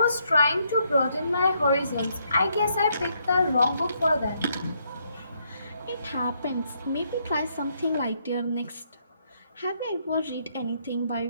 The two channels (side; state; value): both; inverted; correlation -0.73